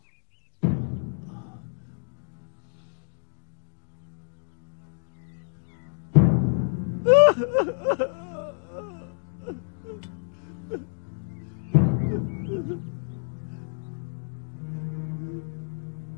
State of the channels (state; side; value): silent; right; digital silence